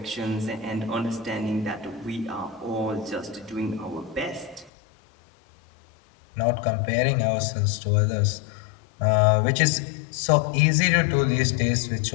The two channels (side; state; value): right; drops out; at 4.7 s